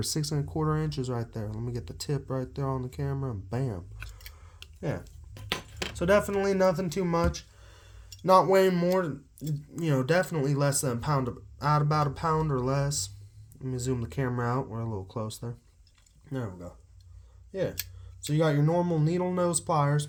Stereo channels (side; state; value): both; identical; correlation 1.00